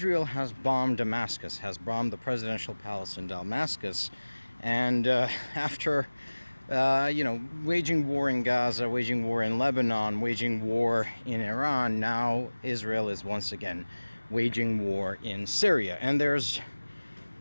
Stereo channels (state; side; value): inverted; both; correlation -1.00